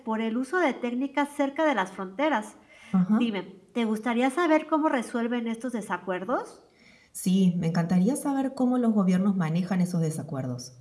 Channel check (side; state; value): both; identical; correlation 1.00